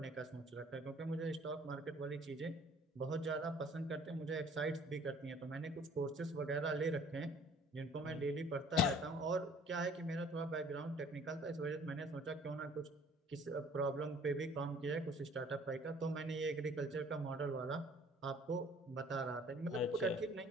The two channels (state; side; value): normal; both; correlation 0.54